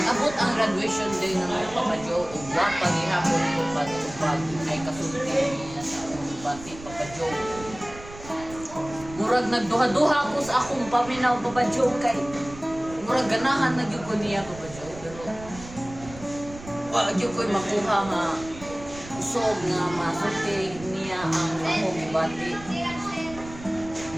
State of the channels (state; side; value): noise; right; rumble, 16 dB below the sound